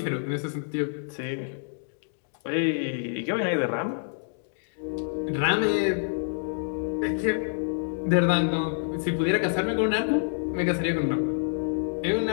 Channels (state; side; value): silent; right; digital silence